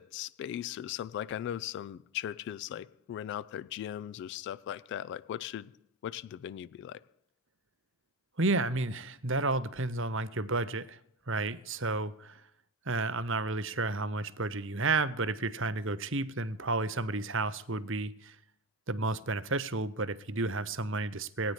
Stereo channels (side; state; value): both; normal; correlation 0.21